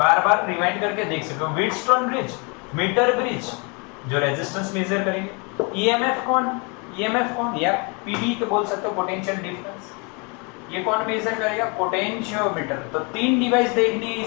बार रिवाइंड करके देख सकते हो। व्हीटस्टोन ब्रिज, मीटर ब्रिज जो रेजिस्टेंस मेजर करेंगे। ईएमएफ कौन? या पीडी के बोल सकते हो, पोटेंशियल डिफरेंस। ये कौन मेजर करेगा? पोटेंशियोमीटर। तो 3 डिवाइस देखनी है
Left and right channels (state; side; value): quieter; right; 32.1 dB